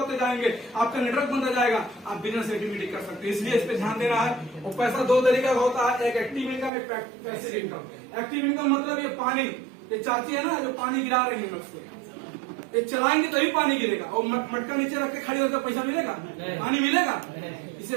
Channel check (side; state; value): left; drops out; at 6.7 s